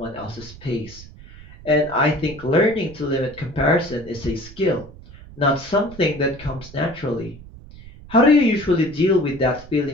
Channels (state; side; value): noise; right; rumble, 18 dB below the sound